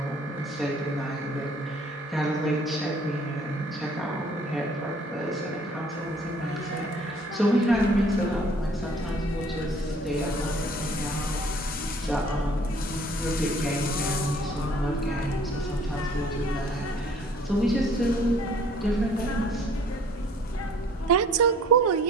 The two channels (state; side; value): normal; both; correlation 0.55